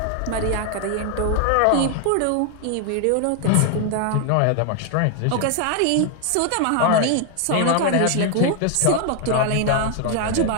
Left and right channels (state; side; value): different; both; correlation 0.00